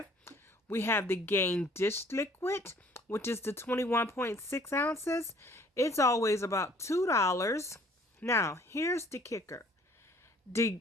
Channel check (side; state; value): both; normal; correlation 0.56